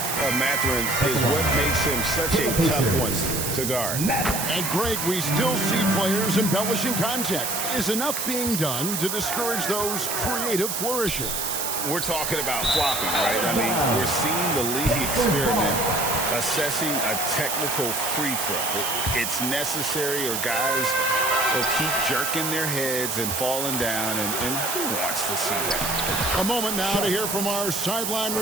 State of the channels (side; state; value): right; noise; hiss, 2 dB below the sound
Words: Mathurin is what makes him such a tough one to guard. And Greg, we still see players embellishing contact. Is enough being done to discourage those creative flourishes? We're talking about flopping, right? I mean, we're seeing the league experiment assessing a technical free throw. It's necessary, or guys will keep jerking their heads and falling down, and who wants to see that? A moment now to hear from our sideline